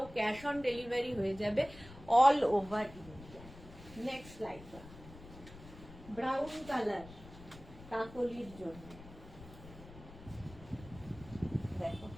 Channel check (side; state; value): left; noise; rumble, 17 dB below the sound